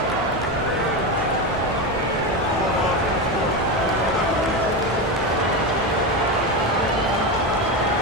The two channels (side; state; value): both; normal; correlation 0.16